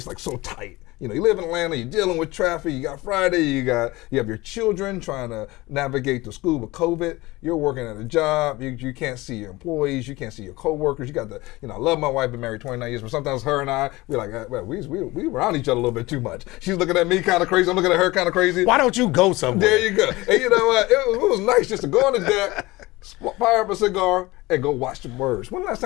like so tight. You live in Atlanta, you're dealing with traffic, you got Friday, you have your children trying to navigate through school with COVID, you're working at a job, you can't see your employees, you can't see your coworkers, you got I love my wife, been married 29 years, but sometimes her and I, we're like, well, we around each other a little bit too much. She's looking at me kind of crazy, I'm looking at her kind of crazy. Why don't you go somewhere? There you go. And you know what, it was nice just to go on the deck, fire up a cigar, and go watch the birds. When the last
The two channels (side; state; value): right; quieter; 20.7 dB